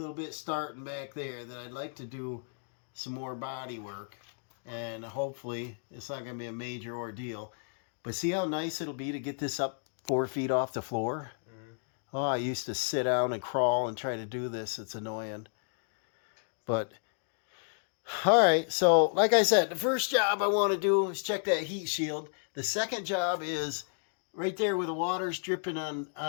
bit starting back there, then I'd like to do some more body work. And hopefully it's not going to be a major ordeal. But see how nice it'll be to get this up 4 feet off the floor? Mm-hmm. Oh, I used to sit down and crawl and try to do this. It's annoying. But, all right. So, like I said, the first job I want to do is check that heat shield. The second job is right there where the water's dripping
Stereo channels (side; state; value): right; silent; digital silence